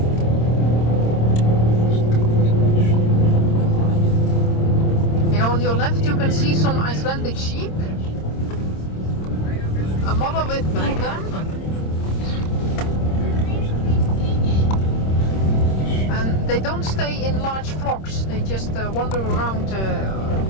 on your left you can see some Icelandic sheep. A mother with two of them. And they don't stay in large flocks, they just wander around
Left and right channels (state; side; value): late; right; 26 ms